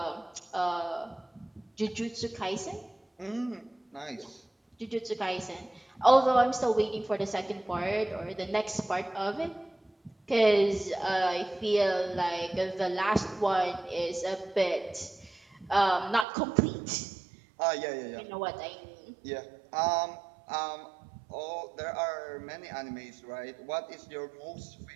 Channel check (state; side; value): drops out; left; at 16.2 s